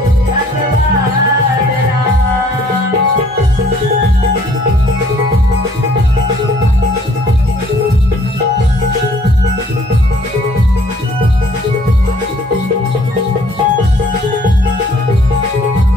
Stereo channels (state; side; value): normal; both; correlation 0.59